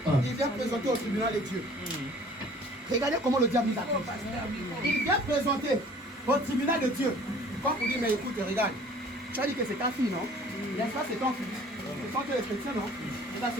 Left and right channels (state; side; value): normal; both; correlation 0.51